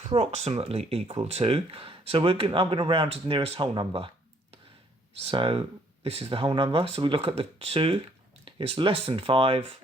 equal to, so I'm going to round to the nearest whole number. So this is the whole number, so we look at the 2, it's less than 5,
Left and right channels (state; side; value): normal; both; correlation 0.65